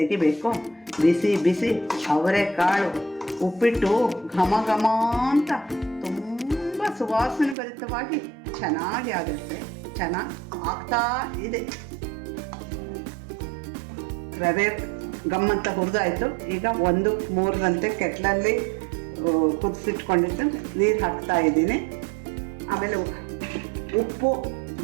ಬಿಸಿ ಬಿಸಿ ಅವರೆಕಾಳು ಉಪ್ಪಿಟ್ಟು ಘಮ ಅಂತ ತುಂಬ ಸುವಾಸನೆ ಭರಿತವಾಗಿ ಚೆನ್ನಾಗಿ ಆಗುತ್ತೆ. ಚೆನ್ನಾಗಿ ಆಗ್ತಾ ಇದೆ. ರವೆ ಗಮ್ಮಂತ ಹುರಿದಾಯಿತು. ಈಗ 1-3ರಂತೆ ಕೆಟ್ಲಲ್ಲಿ ಕುದಿಸಿಟ್ಕೊಂಡಿದ್ದು ನೀರು ಹಾಕ್ತಾ ಇದ್ದೀನಿ. ಆಮೇಲೆ ಉಪ್ಪು,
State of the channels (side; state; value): left; drops out; at 7.6 s